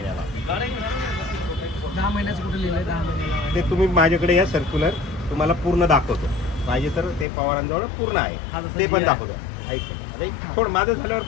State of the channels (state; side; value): drops out; right; at 7.2 s